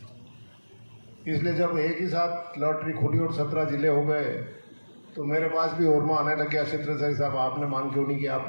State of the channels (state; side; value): inverted; both; correlation -1.00